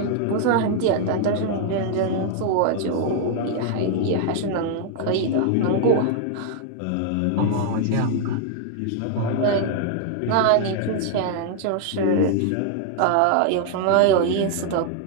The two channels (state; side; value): different; both; correlation 0.00